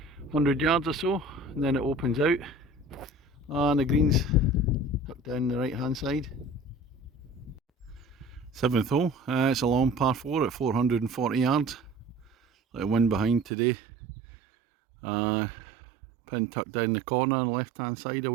100 yards or so, and then it opens out. And the green's tucked down the right hand side. Seventh hole, it's a long par 4 at 440 yards. Like a wind behind today. Pin tucked down the corner on the left hand side,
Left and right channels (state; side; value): drops out; left; at 13.5 s